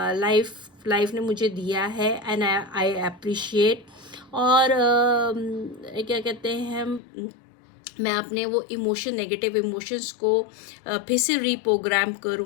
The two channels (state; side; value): drops out; right; at 7.0 s